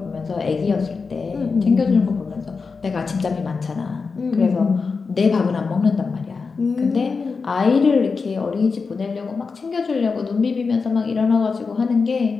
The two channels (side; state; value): right; quieter; 4.8 dB